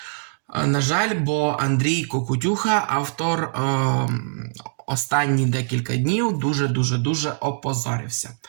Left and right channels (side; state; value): left; silent; digital silence